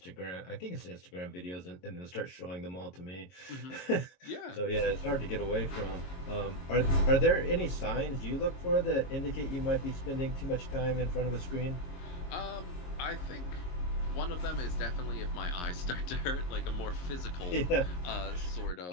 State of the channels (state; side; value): late; right; 22 ms